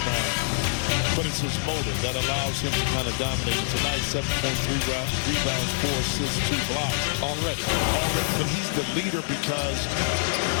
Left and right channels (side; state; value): right; silent; digital silence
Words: But it's his motor that allows him to kind of dominate. And tonight, 7.3 rebounds, 4 assists, 2 blocks. Already. But he's the leader because